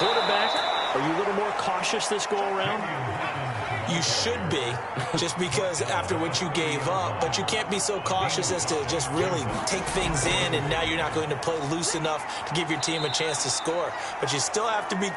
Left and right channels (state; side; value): identical; both; correlation 1.00